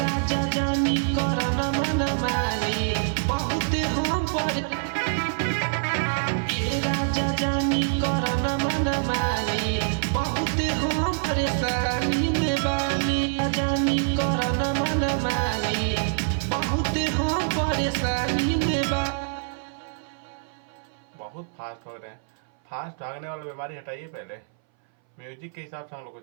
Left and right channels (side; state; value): left; silent; 59 dB below the other